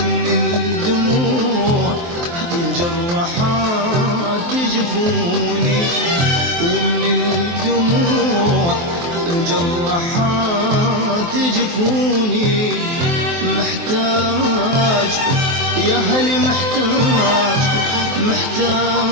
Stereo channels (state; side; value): late; left; 23 ms